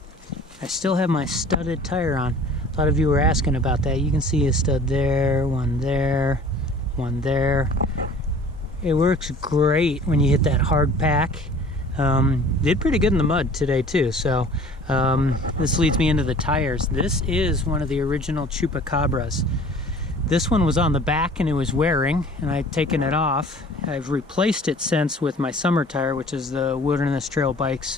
I still have my studded tire on. A lot of you were asking about that. You can see a stud there, one there, one there. It works great when you hit that hard pack. Did pretty good in the mud today too, so this leads me into the tires. This is one of the original Chupacabras. This one was on the back and it was wearing, and I'd taken it off. I've replaced it since with my summer tire, which is the Wilderness Trail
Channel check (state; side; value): normal; both; correlation 0.48